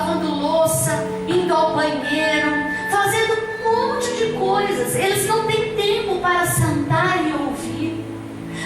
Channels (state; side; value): identical; both; correlation 1.00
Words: louça, indo ao banheiro, fazendo um monte de coisas. Eles não têm tempo para sentar e ouvir.